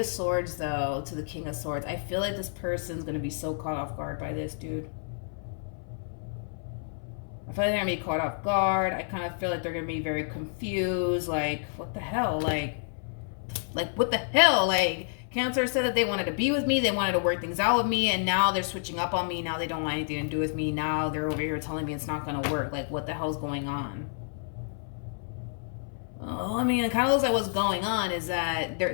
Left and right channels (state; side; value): silent; right; 58 dB below the other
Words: Swords, though, to the King of Swords. I feel like this person's going to be so caught off guard by this, dude. I feel like they're going to be caught off guard. I kind of feel like they're going to be very confused. Like, what the hell? Like, what the hell? Like, Cancer said that they wanted to be with me. They wanted to work things out with me. And now they're switching up on me. Now they don't want anything to do with me. Now they're over here telling me it's not going to work. Like, what the hell's going on? Oh, I mean, it kind of looks like what's going on is that